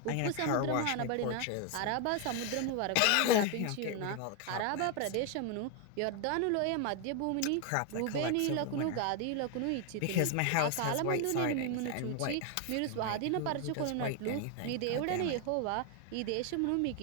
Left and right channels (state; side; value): different; both; correlation 0.01